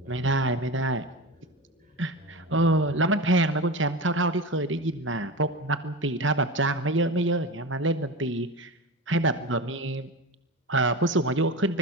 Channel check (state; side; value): normal; both; correlation 0.26